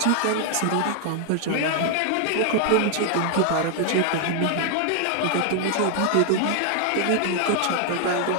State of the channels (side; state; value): both; different; correlation 0.00